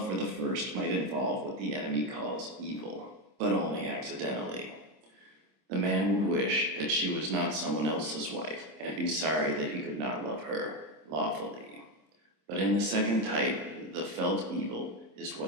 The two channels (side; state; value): left; late; 26 ms